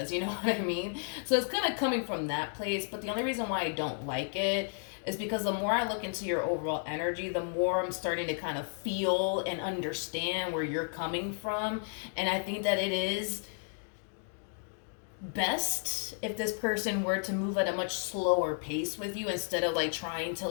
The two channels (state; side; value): silent; right; 56 dB below the other